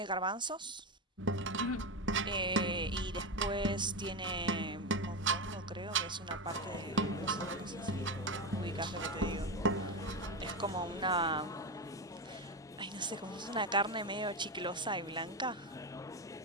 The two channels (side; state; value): both; normal; correlation 0.15